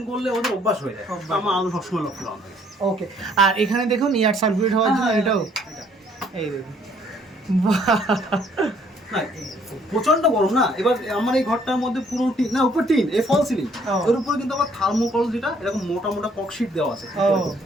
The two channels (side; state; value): both; normal; correlation 0.63